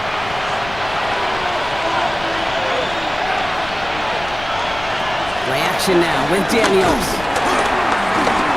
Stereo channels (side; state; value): left; noise; rumble, 14 dB below the sound